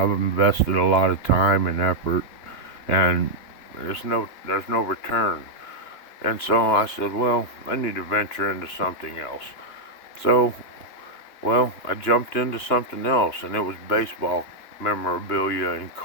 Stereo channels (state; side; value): late; right; 2.9 ms